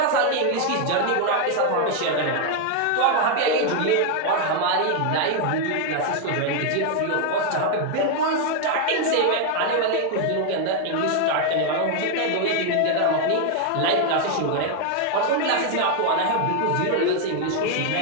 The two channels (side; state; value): both; different; correlation 0.01